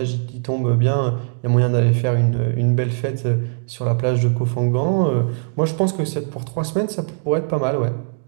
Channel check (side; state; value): left; silent; 66 dB below the other